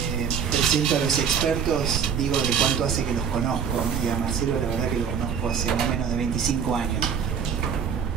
presento a los expertos digo de cuánto hace que los conozco. Y a Marcelo la verdad que lo conozco hace más o menos de 25 años.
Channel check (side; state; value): left; quieter; 7.2 dB